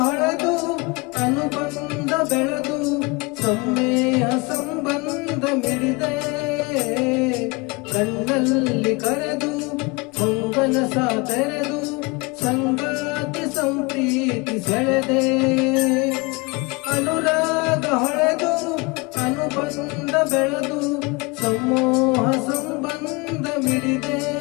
ಅನುಬಂಧ ಬೆಳೆದು ಸಮ್ಮೇಹ ಸಂಬಂಧ ಮಿಡಿದೆ ಕಣ್ಣಲ್ಲಿ ಕರೆದು ಹೊಂಗಲ ಸಾತೆರೆದು ಸಂಗಾತಿ ಸಂಪ್ರೀತಿ ಸೆಳೆದೆ ಅನುರಾಗ ಹೊಳೆದು ಅನುಬಂಧ ಬೆಳೆದು ಸಮೂಹ ಸಂಬಂಧ ಮಿಡಿದೆ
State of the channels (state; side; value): quieter; right; 26.9 dB